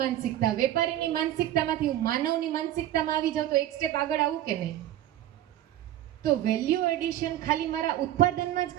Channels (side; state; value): left; quieter; 12.9 dB